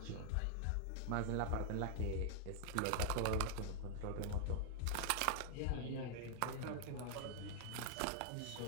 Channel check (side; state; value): both; different; correlation 0.00